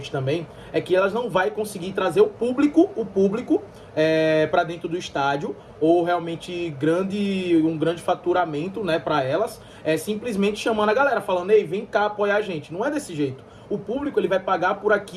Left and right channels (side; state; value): both; identical; correlation 1.00